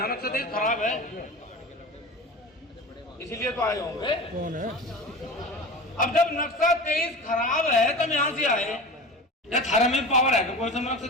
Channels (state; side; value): normal; both; correlation 0.32